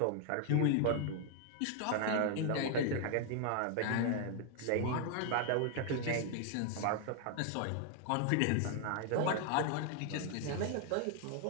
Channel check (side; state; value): both; different; correlation 0.00